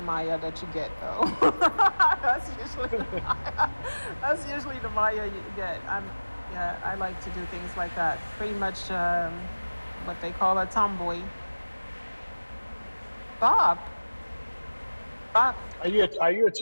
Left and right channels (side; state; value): both; inverted; correlation -1.00